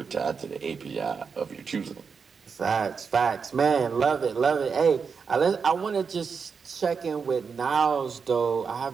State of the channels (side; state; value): left; quieter; 5.7 dB